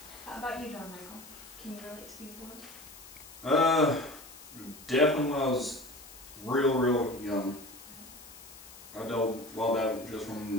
How about you, John Michael? Can you relate to these boys? Definitely when I was real young. I dealt well that just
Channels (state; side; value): noise; left; hiss, 18 dB below the sound